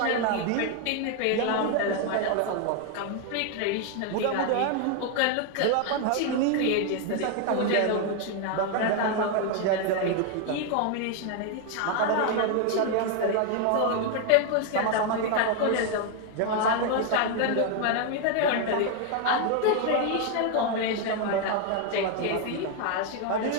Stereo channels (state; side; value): different; both; correlation 0.01